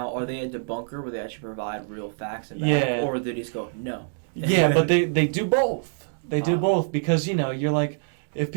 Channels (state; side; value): silent; left; digital silence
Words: are they a debunker where they actually provide real facts and Yeah. or do they just go, no? Yeah, but they do both. They do both because, you're like, if